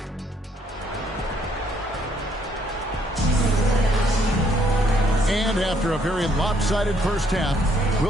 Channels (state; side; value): normal; both; correlation 0.69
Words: And after a very lopsided first half,